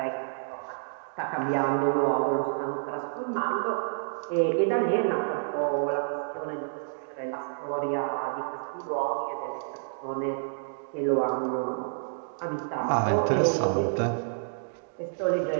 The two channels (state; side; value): silent; left; digital silence